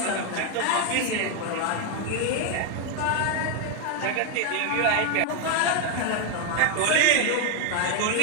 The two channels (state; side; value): different; both; correlation 0.01